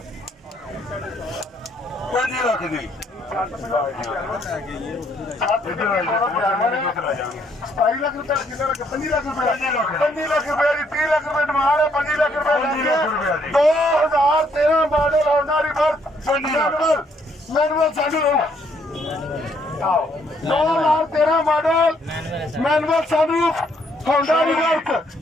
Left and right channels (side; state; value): both; normal; correlation 0.69